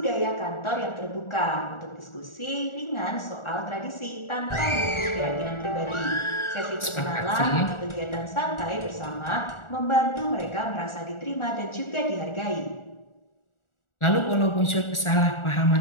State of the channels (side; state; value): right; late; 1.4 ms